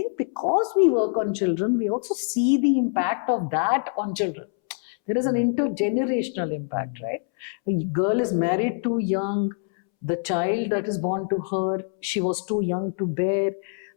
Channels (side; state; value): right; silent; 62 dB below the other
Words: because we work on children, we also see the impact of that on children. There is an intergenerational impact, right? A girl is married too young, the child that is born to her, she was too young to bear,